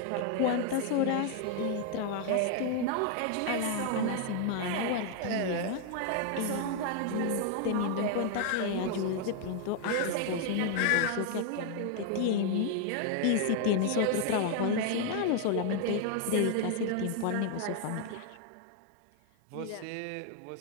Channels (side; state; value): both; different; correlation 0.00